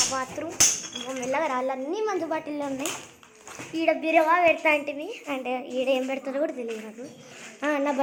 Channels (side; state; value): both; identical; correlation 1.00